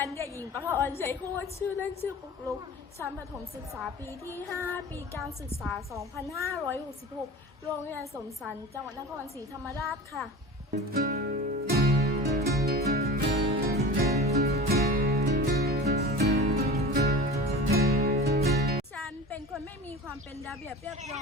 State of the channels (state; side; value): normal; both; correlation 0.34